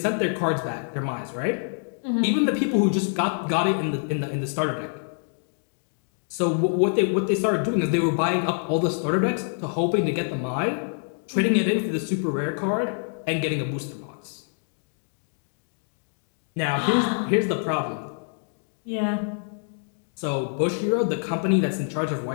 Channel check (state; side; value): silent; right; 58 dB below the other